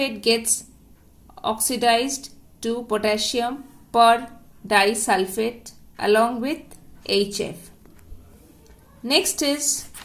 gets oxidized to potassium per-disulfate along with HF. Next is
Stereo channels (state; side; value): identical; both; correlation 1.00